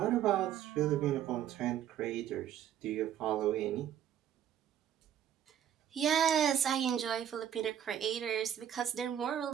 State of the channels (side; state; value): left; quieter; 10.0 dB